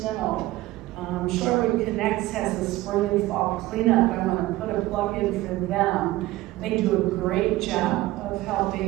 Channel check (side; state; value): left; quieter; 17.4 dB